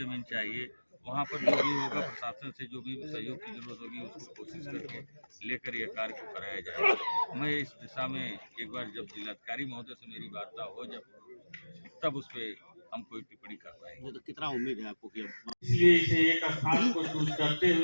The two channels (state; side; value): inverted; both; correlation -1.00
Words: चाहिए। वहाँ पर जो भी होगा, प्रशासन से जो भी सहयोग की जरूरत होगी उसको कोशिश करके लेकर यह कार्य को कराया जाएगा। मैं इस दिशा में एक बार जब जिलाधिकारी महोदय से मेरी वार्ता हो तब उस पर हम कोई टिप्पणी कर पाएंगे। तो कितना उम्मीद है आपको कि इसलिए इसे एक स्थान को चूज करते